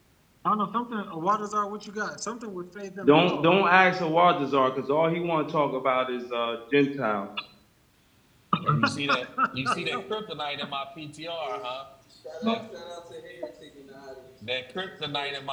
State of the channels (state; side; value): identical; both; correlation 1.00